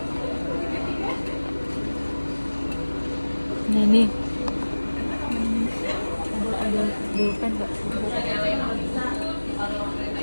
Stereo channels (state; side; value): inverted; both; correlation -1.00